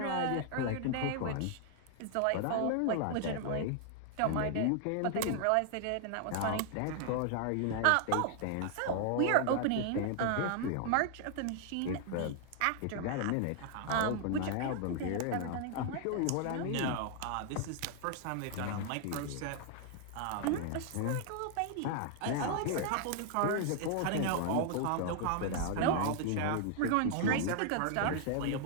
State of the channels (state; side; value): different; both; correlation 0.00